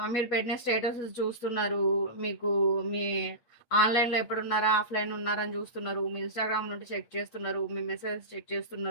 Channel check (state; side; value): late; right; 8.3 ms